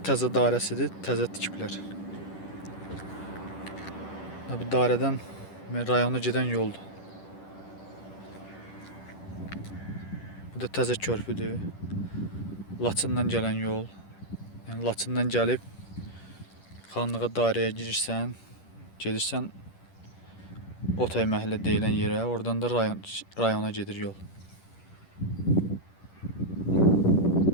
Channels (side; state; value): right; late; 10 ms